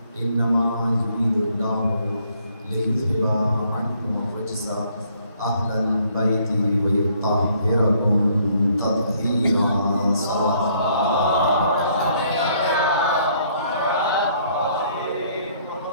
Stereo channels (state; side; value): inverted; both; correlation -0.65